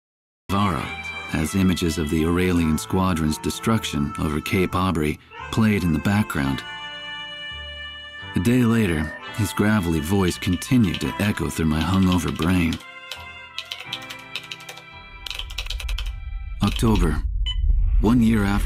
As images of the Aurelian squadron's destruction over Cape Aubrey played in the background. A day later, his gravelly voice continued to echo through my hungover brain. October, 1 year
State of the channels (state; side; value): identical; both; correlation 1.00